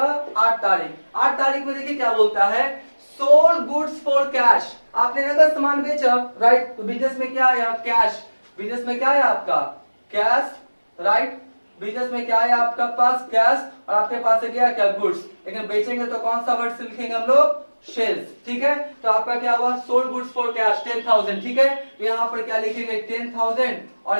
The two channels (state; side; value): inverted; both; correlation -1.00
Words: 8 तारीख। 8 तारीख में देखिए क्या बोलता है, सोल्ड गुड्स फॉर कैश, आपने नगद सामान बेचा, राइट, तो बिजनेस में क्या आया कैश, बिजनेस में क्या है आपका कैश, राइट, बिजनेस में क्या है आपका पास कैश, और आपके पास है क्या गुड्स, लेकिन बेचेंगे तो कौन सा वर्ड से लिखेंगे हम लोग, सेल्स। ठीक है, तो आपका क्या हुआ सोल्ड गुड्स फॉर कैश 10,000। ठीक है, तो यहाँ पर क्या लिखेंगे 10,000,